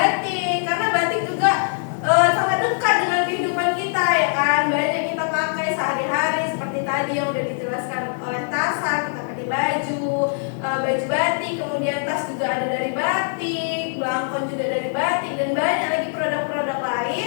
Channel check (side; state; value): right; silent; digital silence